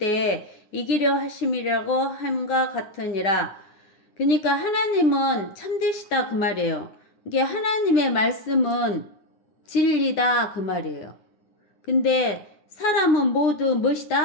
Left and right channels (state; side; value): late; right; 10 ms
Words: 이기려 하심이라고 함과 같으니라. 그러니까 하나님은 참되시다 그 말이에요. 이게 하나님의 말씀은 진리다 그 말이에요. 근데 사람은 모두